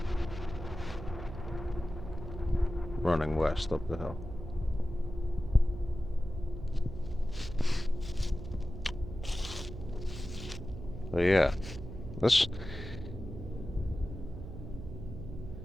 running west up the hill. So yeah, this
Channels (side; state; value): right; noise; hum, 9 dB below the sound